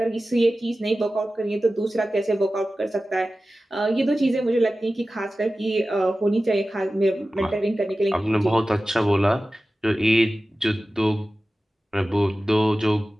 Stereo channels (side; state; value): both; normal; correlation 0.95